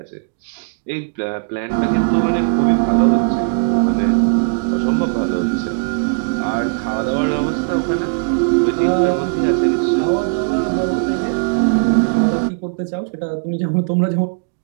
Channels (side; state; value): left; silent; digital silence